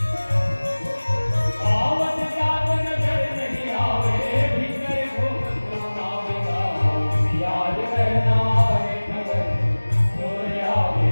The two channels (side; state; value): both; inverted; correlation -1.00